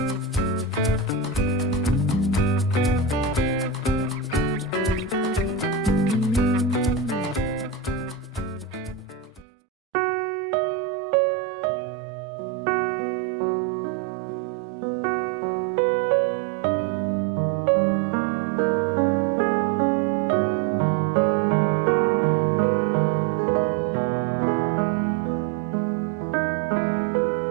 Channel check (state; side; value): drops out; left; at 9.5 s